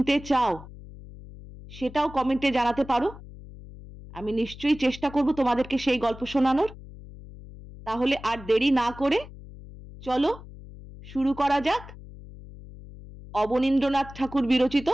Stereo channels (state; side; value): noise; left; hum, 16 dB below the sound